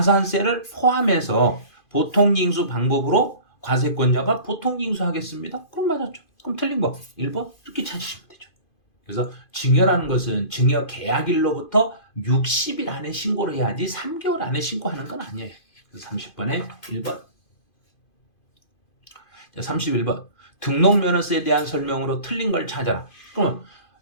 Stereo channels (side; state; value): right; late; 2.5 ms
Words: 포함해서 보통징수 방법으로 과세권자가 보통징수하겠습니다. 그럼 맞았죠. 그럼 틀린 거 1번 이렇게 찾으시면 되죠. 그래서 증여라는 것은 증여 계약일로부터 60일 안에 신고를 해야지 3개월 안에 신고하는 건 아니에요. 그래서 30번에 1번. 자, 31번. 등록면허세에 대한 설명으로 틀린 걸 찾아라. 그러면